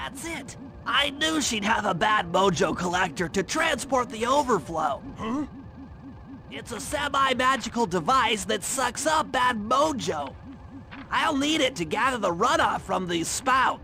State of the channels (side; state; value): both; identical; correlation 1.00